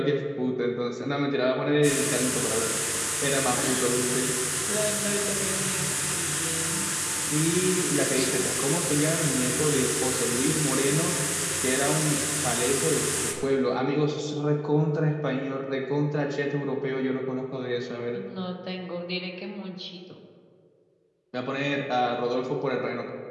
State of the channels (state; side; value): identical; both; correlation 1.00